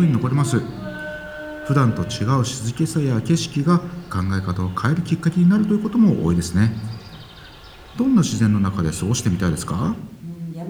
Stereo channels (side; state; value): both; identical; correlation 1.00